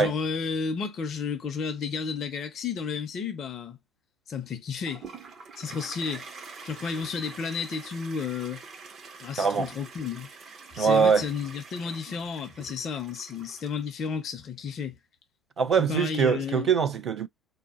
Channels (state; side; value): normal; both; correlation 0.57